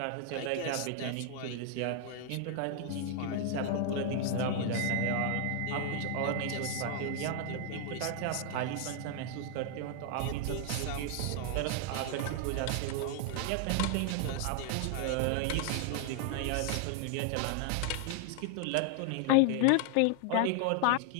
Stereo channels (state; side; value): different; both; correlation 0.00